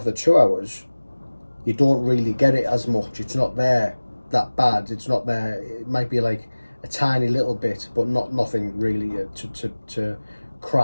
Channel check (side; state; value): both; inverted; correlation -1.00